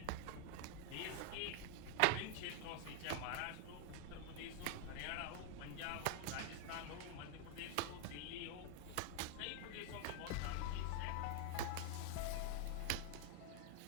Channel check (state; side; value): different; both; correlation 0.00